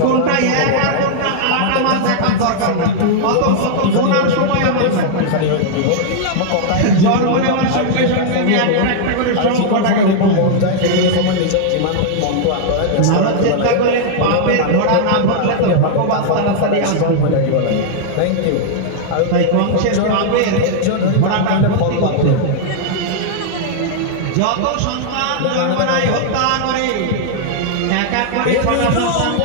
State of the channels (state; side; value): different; both; correlation -0.01